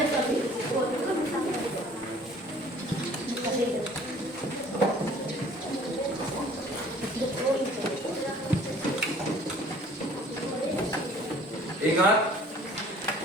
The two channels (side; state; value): both; normal; correlation 0.52